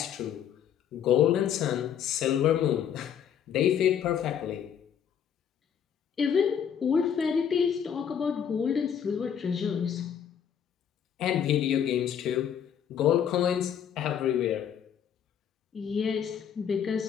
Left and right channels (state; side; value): quieter; right; 8.6 dB